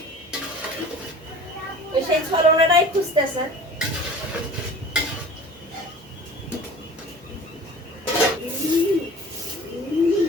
ওই সেই ছলনাটাই খুঁজতেছে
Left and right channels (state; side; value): normal; both; correlation 0.42